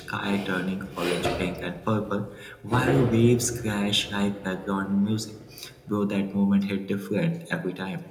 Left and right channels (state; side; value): identical; both; correlation 1.00